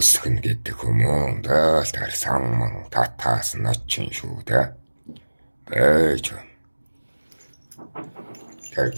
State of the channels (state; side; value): inverted; both; correlation -1.00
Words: гэдэг хүмүүн дээл тэр самман татаас нь очин шүү дээ. Бэж.